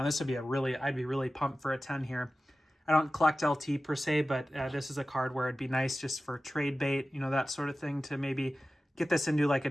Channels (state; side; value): normal; both; correlation 0.95